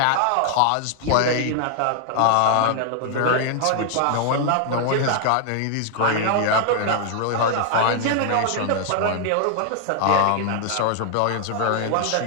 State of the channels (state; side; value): different; both; correlation 0.00